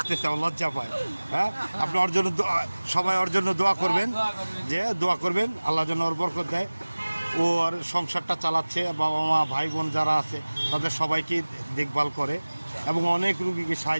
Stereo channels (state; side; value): inverted; both; correlation -1.00